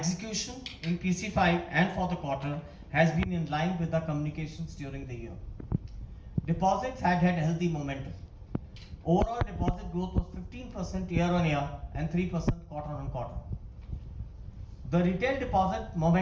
in PC5 and for the quarter has been in line with our communications during the year. Deposits had healthy momentum. Overall deposit growth was 15% year-on-year and 3% quarter-on-quarter. The retail deposit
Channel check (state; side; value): identical; both; correlation 1.00